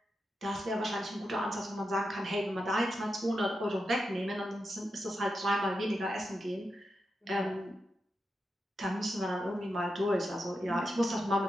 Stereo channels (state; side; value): normal; both; correlation 0.88